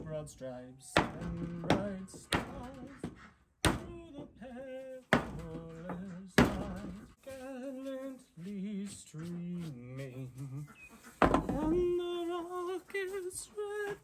Broad stripes and bright stars through the perilous night, gallantly streaming on the rocket's red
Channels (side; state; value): both; identical; correlation 1.00